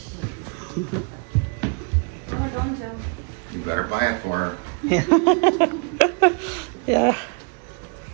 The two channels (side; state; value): left; quieter; 35.0 dB